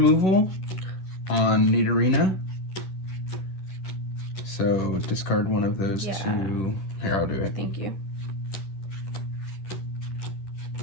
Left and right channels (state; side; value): late; right; 11 ms